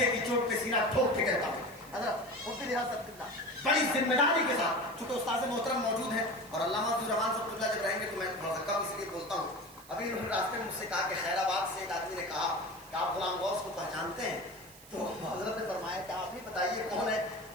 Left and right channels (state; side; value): noise; right; hiss, 20 dB below the sound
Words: کی چوٹ پہ سینہ ٹھوک کے کہتا ہوں حضرت مفتی حضرت اللہ بڑی ذمہ داری کے ساتھ، چونکہ استاد محترم موجود ہیں اور علامہ عبد الرحمان صاحب اللہ جب رہیں گے تو میں تھوڑا سا کم اس لیے بولتا ہوں. ابھی انہوں نے راستے میں مجھ سے کہا کہ خیر آباد سے ایک آدمی نے کہا کہ آپ غلام غوث کو پہچانتے ہیں؟ تو حضرت نے فرمایا کہ آپ ہی بتائیے کون ہے.